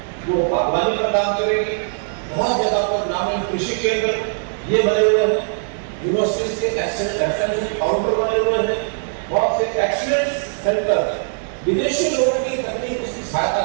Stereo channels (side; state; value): left; silent; 65 dB below the other